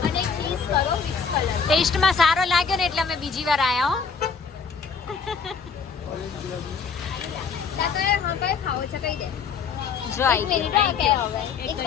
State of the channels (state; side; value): quieter; right; 5.8 dB